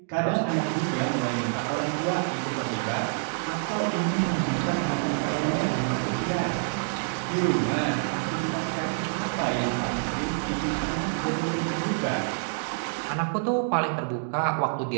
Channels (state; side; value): silent; left; digital silence